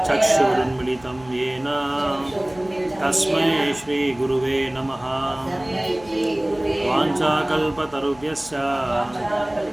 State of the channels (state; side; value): noise; left; hum, 22 dB below the sound